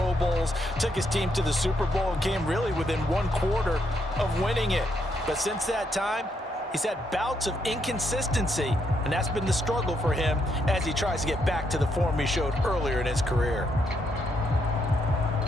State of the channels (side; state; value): both; normal; correlation 0.77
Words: Bowls, took his team to the Super Bowl and came really within 1/4 of winning it. But since that time, he's had bouts of inconsistency, and that's been the struggle for him as he tries to get back to the form he showed earlier in his career.